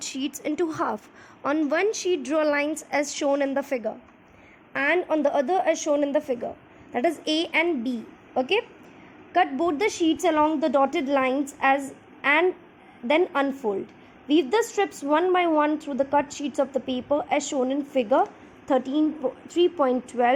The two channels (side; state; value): both; identical; correlation 1.00